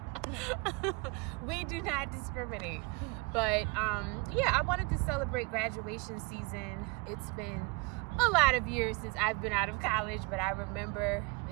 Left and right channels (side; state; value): left; quieter; 28.6 dB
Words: We do not discriminate. But yeah, I wanted to celebrate graduation season. It's been a lot of years since I've been out of college, but I remember